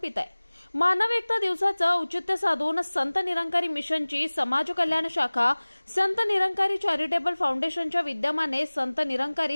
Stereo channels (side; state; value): both; inverted; correlation -1.00